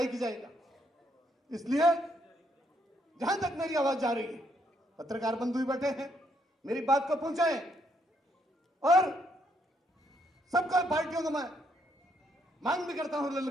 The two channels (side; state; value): both; normal; correlation 0.73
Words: ही जाएगा। इसलिए जहां तक मेरी आवाज जा रही है, पत्रकार बंधु भी बैठे हैं, मेरी बात को पहुंचाएं और सबका पार्टियों को मैं मांग भी करता हूं,